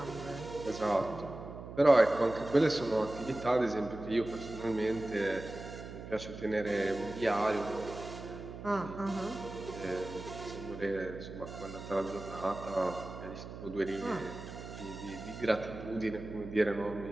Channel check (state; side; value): noise; right; hum, 11 dB below the sound